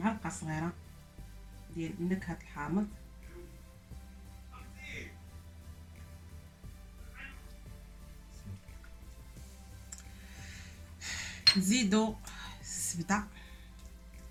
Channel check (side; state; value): both; identical; correlation 1.00